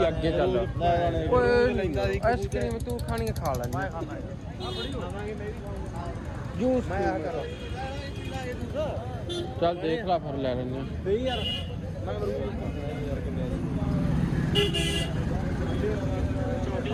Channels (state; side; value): identical; both; correlation 1.00